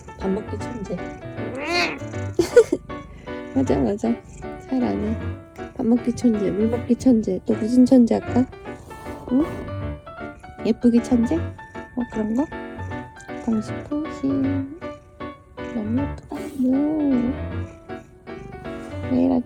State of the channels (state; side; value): identical; both; correlation 1.00